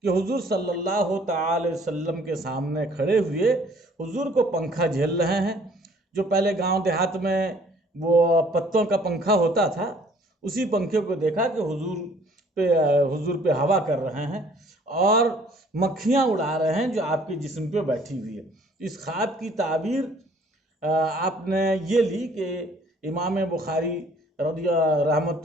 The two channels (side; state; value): both; normal; correlation 0.57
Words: کہ حضور صلی اللہ تعالی وسلم کے سامنے کھڑے ہوئے حضور کو پنکھا جھیل رہے ہیں۔ جو پہلے گاؤں دیہات میں وہ پتوں کا پنکھا ہوتا تھا، اسی پنکھے کو دیکھا کہ حضور پہ ہوا کر رہے ہیں اور مکھیاں اڑا رہے ہیں جو آپ کے جسم پہ بیٹھی ہوئی ہے۔ اس خواب کی تعبیر آپ نے یہ لی کہ امام بخاری